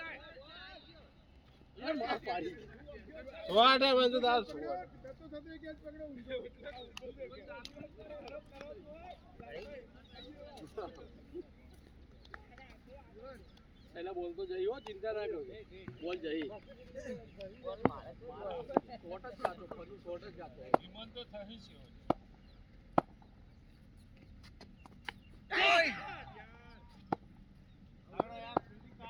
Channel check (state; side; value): identical; both; correlation 1.00